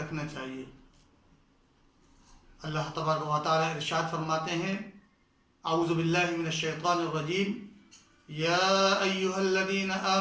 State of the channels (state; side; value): identical; both; correlation 1.00